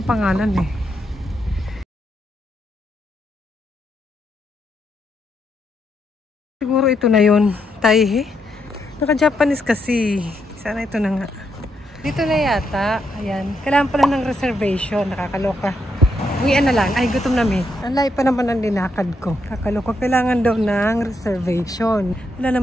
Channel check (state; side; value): normal; both; correlation 0.79